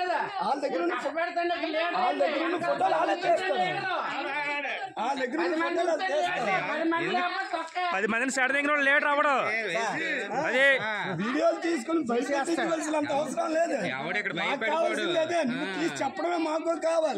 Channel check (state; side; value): identical; both; correlation 1.00